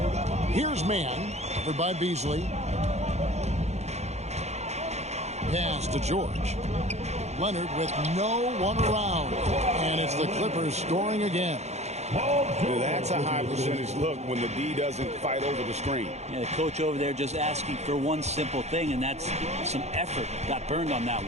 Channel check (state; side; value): late; left; 0.32 ms